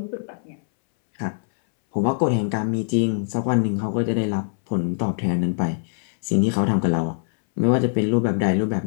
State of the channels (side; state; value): right; silent; 64 dB below the other